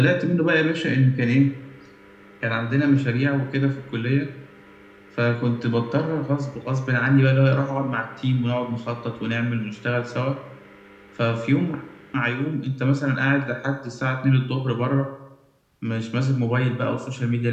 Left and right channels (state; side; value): identical; both; correlation 1.00